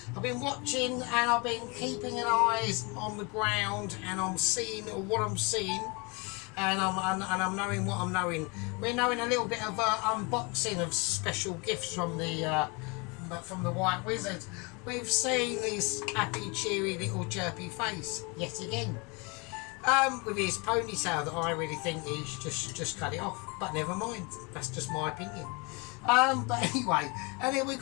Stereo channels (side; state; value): right; quieter; 29.7 dB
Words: I've been watching, and I've been keeping an eyes on the ground, and I'm seeing what I'm seeing. And I'm knowing what I'm knowing. We're knowing a little bit of unboxing of special gifts from the White Wizard. We've seen his happy, cheery little chirpy face yet again, with his ponytail that I really think he's just cut it off. But never mind, that's just my opinion. But anyway, and then we